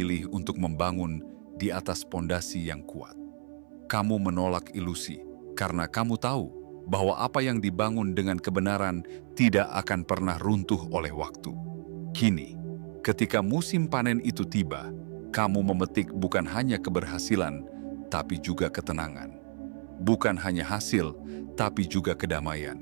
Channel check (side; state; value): left; silent; 57 dB below the other